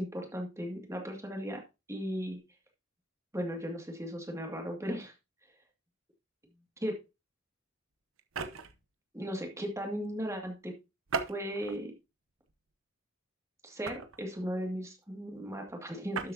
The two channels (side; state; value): both; normal; correlation 0.61